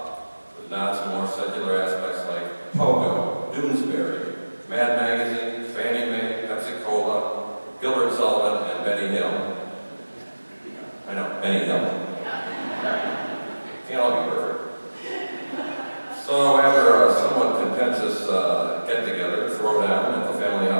with nods to more secular aspects like Pogo, Doonesbury, Mad Magazine, Fannie Mae, Pepsi Cola, Gilbert Sullivan, and Benny Hill. I know, Benny Hill. Can't all be perfect. So after a somewhat contentious get-together, throwdown at the family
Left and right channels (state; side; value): inverted; both; correlation -1.00